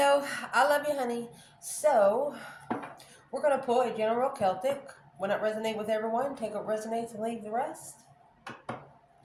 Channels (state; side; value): identical; both; correlation 1.00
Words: I love you, honey. So, we're going to pull a general Celtic. When it resonates with everyone, take what resonates and leave the rest.